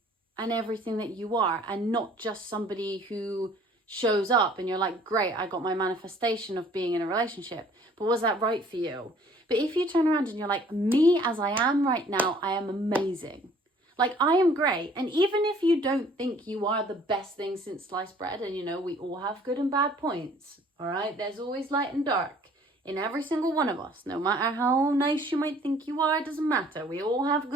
and everything that you are, and not just somebody who shows up and you're like, great, I got my manifestation of being in a relationship, but was that right for you? But if you turn around and you're like, me as I am right now, I am amazing. Like, I am great. And even if you don't think you are the best thing since sliced bread, and you know, we all have good and bad points, all right? There's always light and dark in every single one of us. No matter how nice you might think you are, it doesn't matter. We all have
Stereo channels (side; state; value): both; normal; correlation 0.56